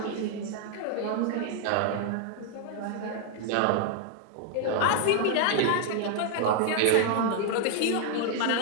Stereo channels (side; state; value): both; different; correlation 0.00